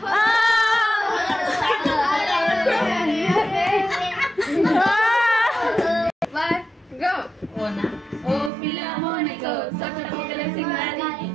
ఓ పిల్ల మోనికో సొట్టపుక్కల సింగారి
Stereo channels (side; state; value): left; drops out; at 8.5 s